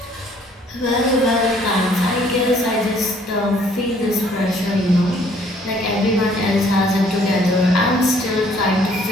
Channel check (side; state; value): both; normal; correlation 0.61